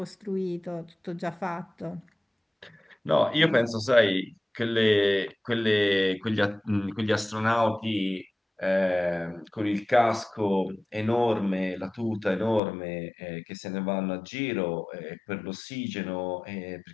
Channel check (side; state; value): right; drops out; at 12.6 s